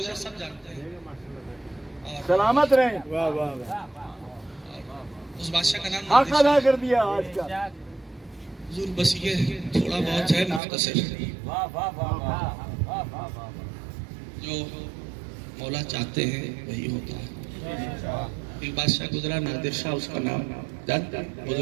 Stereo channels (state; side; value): drops out; left; at 10.6 s